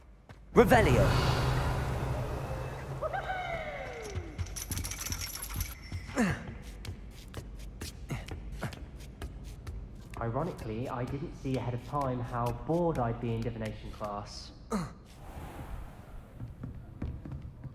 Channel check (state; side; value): identical; both; correlation 1.00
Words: Revelio. Ironically, I didn't see ahead of time how bored I'd be in divination class.